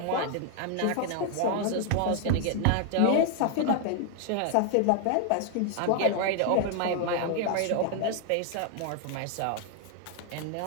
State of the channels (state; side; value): different; both; correlation 0.00